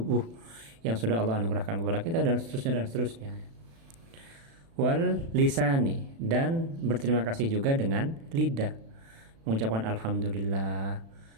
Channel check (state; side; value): late; left; 36 ms